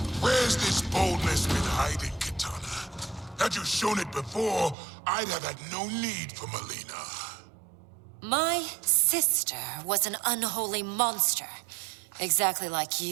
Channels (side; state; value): left; drops out; at 4.8 s